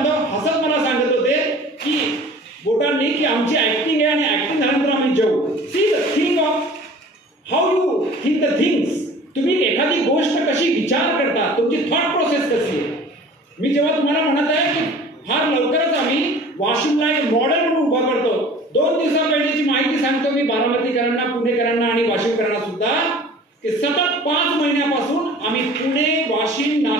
हसत मला सांगत होते की बोटांनी की आमची ऍक्टिंग आहे आणि ऍक्टिंग झाल्यानंतर आम्ही जेवू. See the thing of how you think the things. तुम्ही एखादी गोष्ट कशी विचार करता, तुमची थॉट प्रोसेस कशी आहे. मी जेव्हा तुम्हाला म्हणत आहे की फार लवकरच आम्ही वाशिमला एक मॉडेल म्हणून उभा करतो. 2 दिवसापहिलेची माहिती सांगतो मी बारामतीकरांना, पुणेकरांना आणि वाशिमकरांना सुद्धा की सतत 5 महिन्यापासून आम्ही पुणे, वाशिम,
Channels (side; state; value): both; normal; correlation 0.45